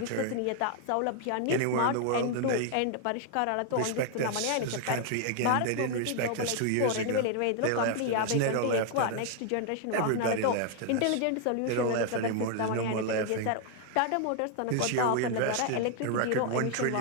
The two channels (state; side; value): different; both; correlation 0.00